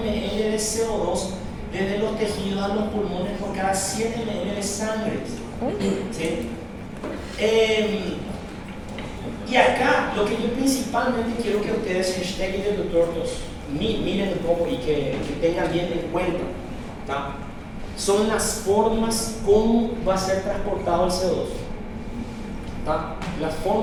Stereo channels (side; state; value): both; identical; correlation 1.00